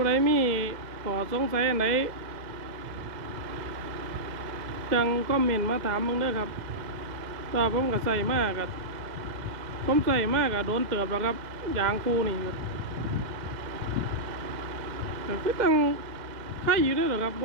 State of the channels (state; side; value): late; left; 2.0 ms